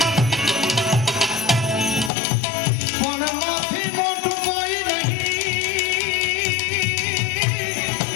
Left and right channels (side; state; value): right; drops out; at 2.1 s